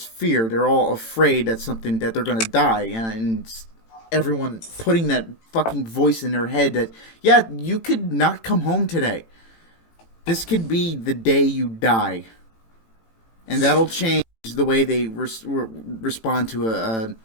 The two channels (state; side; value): late; right; 18 ms